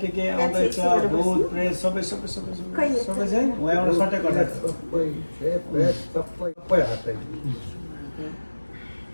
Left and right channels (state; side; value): inverted; both; correlation -1.00